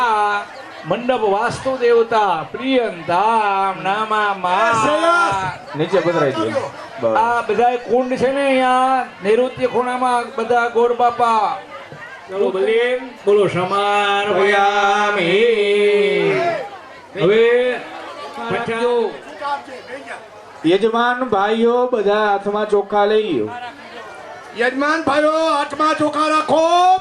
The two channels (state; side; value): identical; both; correlation 1.00